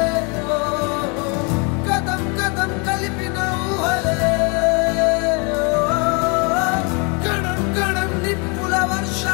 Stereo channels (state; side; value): quieter; right; 33.2 dB